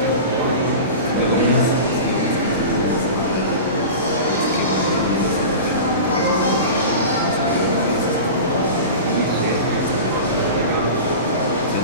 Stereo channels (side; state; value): both; inverted; correlation -0.32